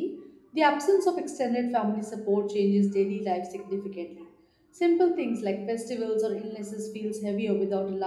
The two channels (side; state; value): both; identical; correlation 1.00